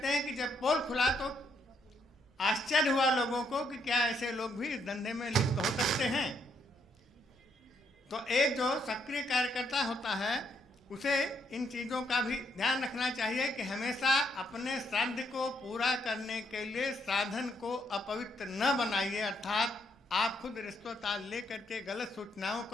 हैं कि जब पोल खुला तो आश्चर्य हुआ लोगों को कि क्या ऐसे लोग भी इस धंधे में लिप्त हो सकते हैं। तो एक जो सक्रिय कार्यकर्ता होता है उसे इन चीज़ों का भी ध्यान रखना चाहिए कि हमेशा अपने श्राद्ध को पूरा करने के लिए साधन को अपवित्र न बनाइए। अर्थात आप खुद रिश्वत ले करके गलत सूचनाओं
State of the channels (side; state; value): both; normal; correlation 0.74